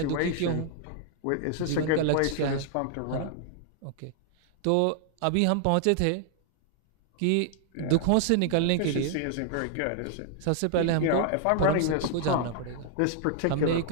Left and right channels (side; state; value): both; different; correlation 0.00